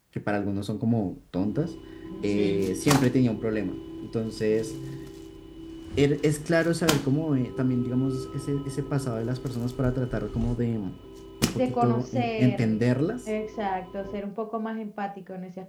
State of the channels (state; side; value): identical; both; correlation 1.00